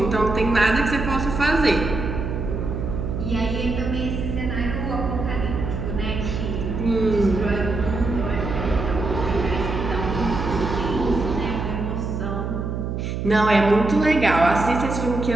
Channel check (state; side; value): noise; right; hum, 3 dB below the sound